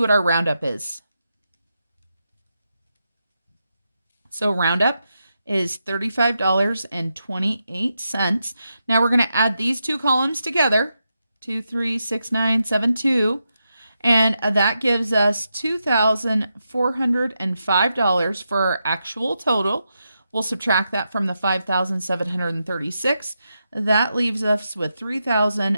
our roundup is. So roundup is $35.28. Now we're going to add these two columns together, 236972, and that gives us $2,405 for our actual total. We'll subtract that from the $5,736. That leaves us with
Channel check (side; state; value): both; inverted; correlation -0.86